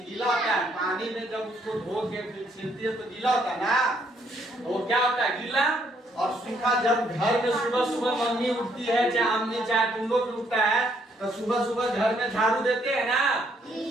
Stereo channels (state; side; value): normal; both; correlation 0.69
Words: गीला होता है? पानी में जब उसको धो के फिर छिलती है तो गीला होता है ना, तो वो क्या होता है? गीला और सूखा। जब घर में सुबह सुबह मम्मी उठती है, चाहे अम्मी चाहे तुम लोग उठता है, तो सुबह सुबह घर में झाड़ू देते हैं ना,